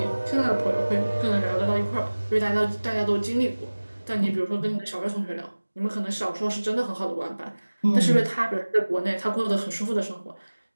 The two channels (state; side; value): inverted; both; correlation -1.00